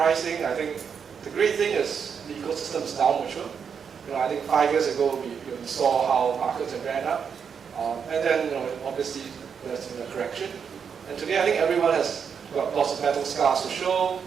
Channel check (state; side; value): quieter; left; 6.8 dB